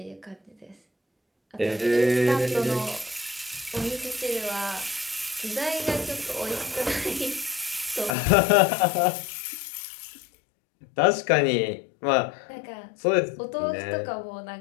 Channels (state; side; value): drops out; right; at 8.1 s